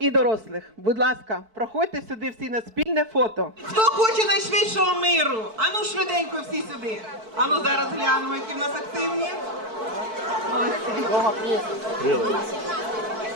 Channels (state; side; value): late; left; 4.6 ms